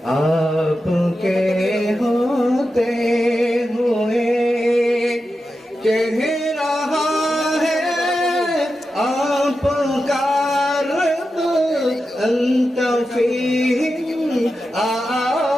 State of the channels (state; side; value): normal; both; correlation 0.90